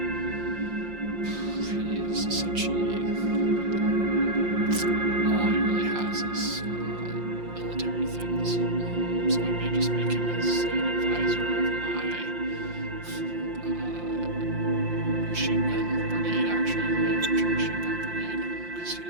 He is essentially... all he really has is military things. So I may just make him as an advisor of my machine gun brigade, actually, my infantry machine gun brigade, because he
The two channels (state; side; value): late; left; 5.7 ms